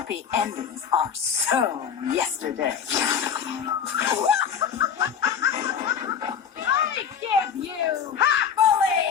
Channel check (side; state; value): right; quieter; 7.5 dB